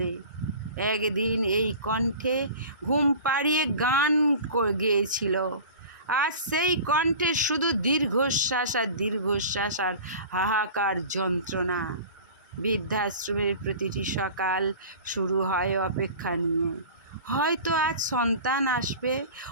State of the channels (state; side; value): inverted; both; correlation -0.39